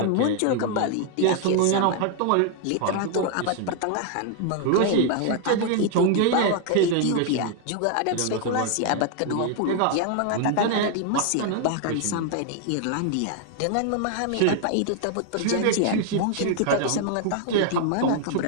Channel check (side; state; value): both; different; correlation 0.00